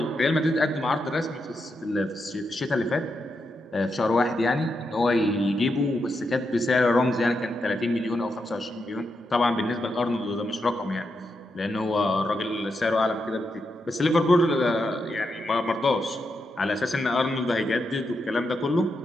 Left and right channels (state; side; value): normal; both; correlation 0.84